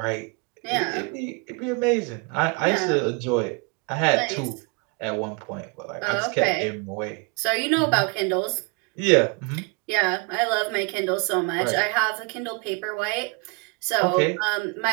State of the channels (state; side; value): quieter; left; 29.9 dB